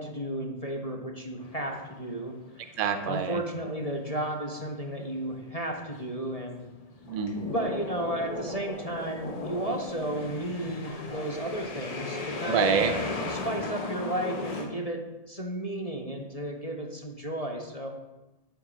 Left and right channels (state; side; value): late; right; 1.7 ms